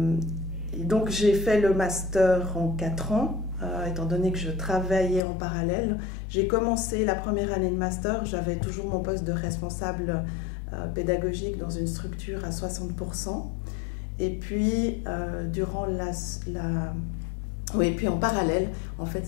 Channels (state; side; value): drops out; right; at 5.2 s